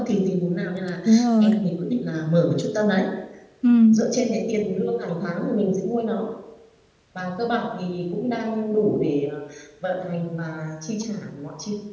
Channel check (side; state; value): both; identical; correlation 1.00